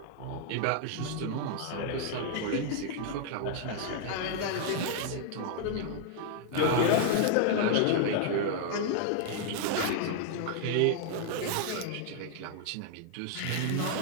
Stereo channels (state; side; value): different; both; correlation 0.00